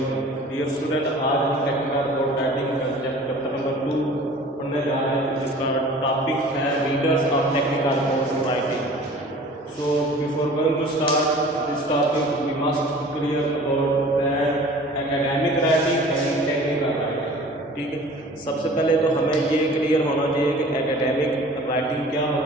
dear student. आज हम टेक्निकल बोर्ड राइटिंग का सब्जेक्ट चैप्टर नंबर 2 पढ़ने जा रहे हैं, जिसका टॉपिक है readers of technical board writing. So before going to start this topic we must clear about that academic writing and technical writing. ठीक है, सबसे पहले तो हमें ये क्लियर होना चाहिए कि एकेडमिक राइटिंग क्या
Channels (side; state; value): both; normal; correlation 0.45